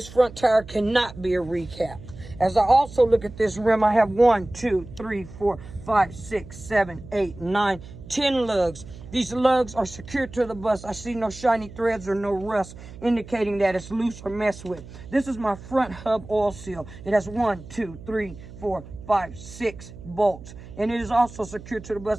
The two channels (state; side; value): noise; right; hum, 16 dB below the sound